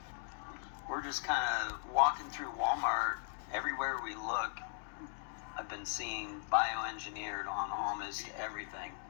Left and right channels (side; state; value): right; silent; 52 dB below the other